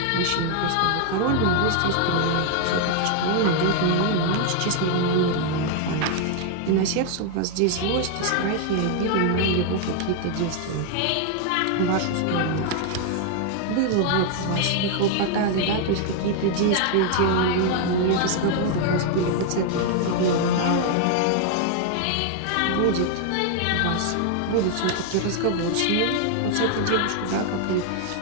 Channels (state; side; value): different; both; correlation 0.00